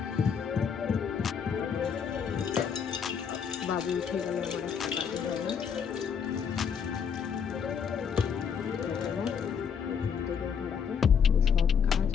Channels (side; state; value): right; quieter; 7.0 dB